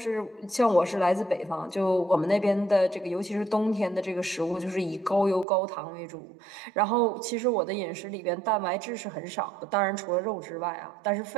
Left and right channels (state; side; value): drops out; left; at 5.5 s